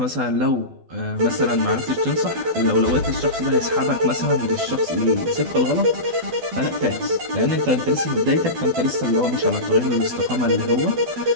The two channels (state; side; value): late; left; 12 ms